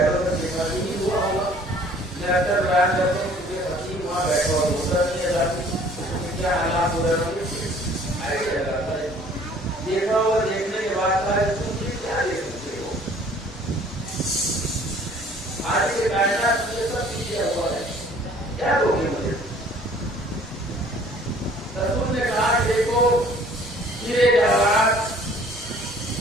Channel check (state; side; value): normal; both; correlation 0.54